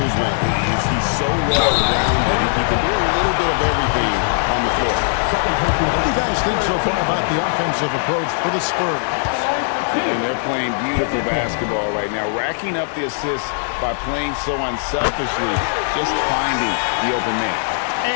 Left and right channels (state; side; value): silent; right; digital silence